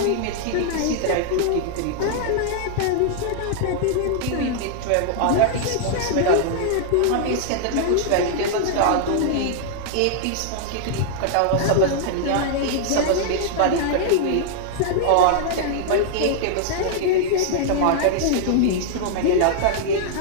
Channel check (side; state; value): both; different; correlation -0.01